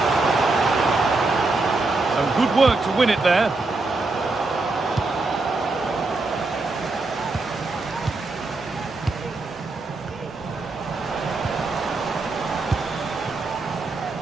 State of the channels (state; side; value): quieter; left; 3.4 dB